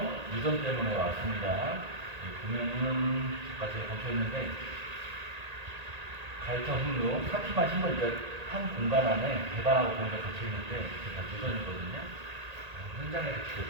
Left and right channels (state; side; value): late; left; 1.8 ms